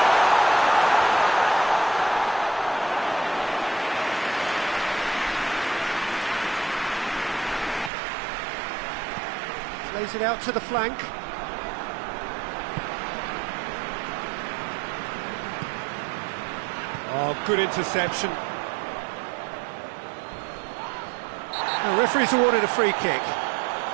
Plays it out to the flank. Oh, good interception. The referee's awarded a free kick.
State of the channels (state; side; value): drops out; left; at 7.9 s